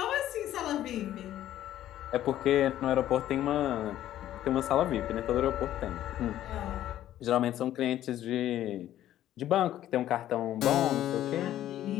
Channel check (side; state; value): right; quieter; 12.6 dB